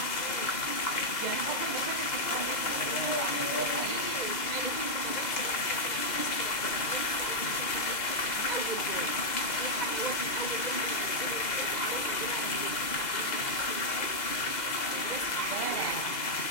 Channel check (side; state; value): right; late; 2.0 ms